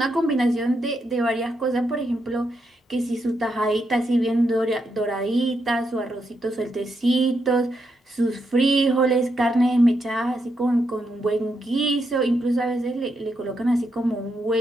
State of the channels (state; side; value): normal; both; correlation 0.81